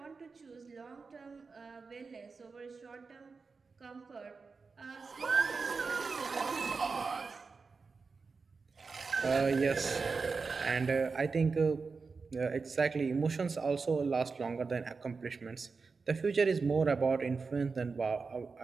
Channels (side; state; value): left; quieter; 4.6 dB